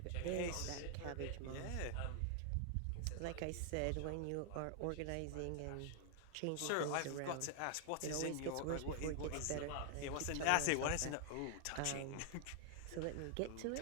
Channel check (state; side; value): different; both; correlation 0.00